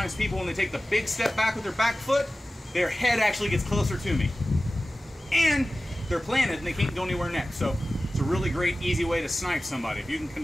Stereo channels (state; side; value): normal; both; correlation 0.95